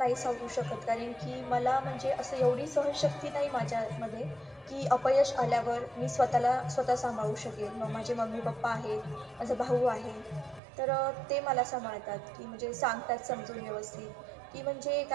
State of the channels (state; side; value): drops out; left; at 10.6 s